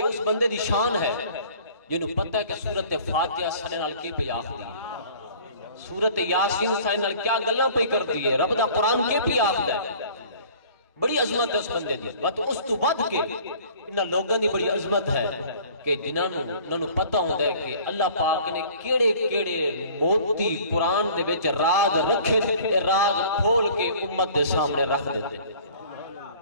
اس بندے دی شان ہے جنہوں پتہ ہے کہ سورت فاتحہ سنے نال کی پہ آخری، سورت یاسین سنے نال کیا گلہ پہ کر دیئے، رب دا قرآن کے پہ آخر ہے، بڑی عظمت ہے اس بندے دی۔ اس تو ود کے انہاں لوگاں دی بڑی عظمت ہے کہ جنہوں پتہ ہوتا ہے کہ اللہ پاک نے کیڑے کیڑے موتی قرآن دے وچ راز رکھے تھے، راز کھول کے امت دے سامنے رکھ دیتے۔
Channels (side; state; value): both; inverted; correlation -0.49